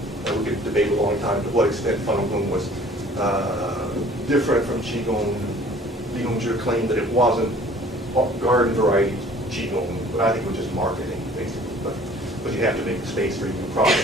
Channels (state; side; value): normal; both; correlation 0.51